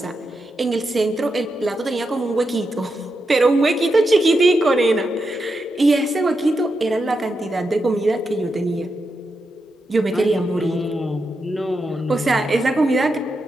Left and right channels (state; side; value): normal; both; correlation 0.86